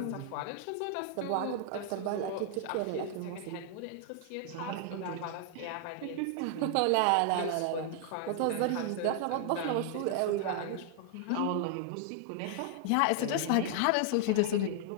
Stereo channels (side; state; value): both; different; correlation 0.00